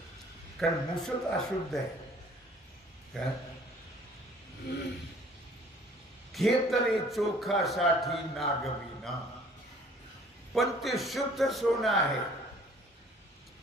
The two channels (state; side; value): normal; both; correlation 0.54